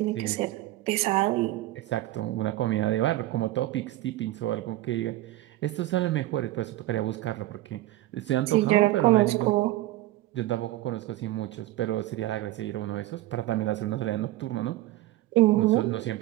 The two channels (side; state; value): left; quieter; 16.4 dB